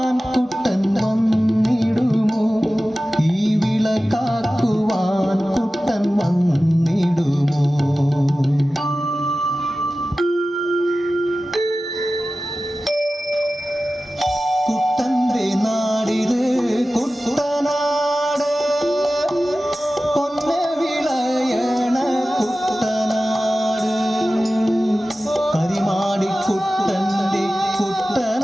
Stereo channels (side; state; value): both; normal; correlation 0.95